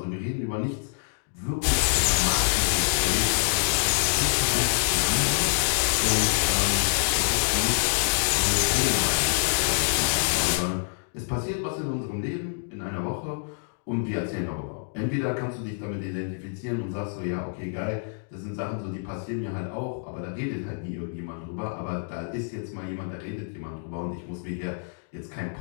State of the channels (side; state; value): right; silent; digital silence